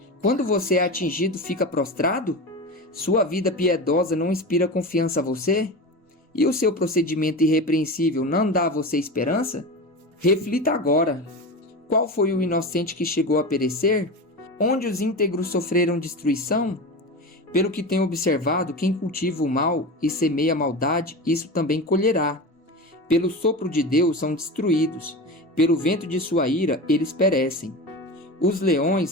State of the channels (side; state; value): both; normal; correlation 0.26